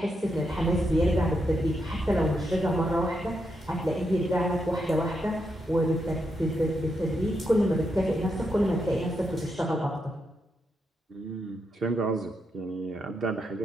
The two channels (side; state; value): both; normal; correlation 0.83